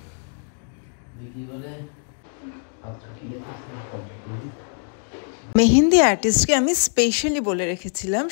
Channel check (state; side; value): silent; right; 57 dB below the other